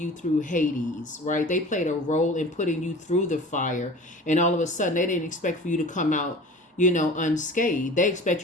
through Hades, right? They played a role in putting you through the fire, and all of a sudden they didn't expect for you to come out, unscathed. They expect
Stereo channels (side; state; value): both; normal; correlation 0.40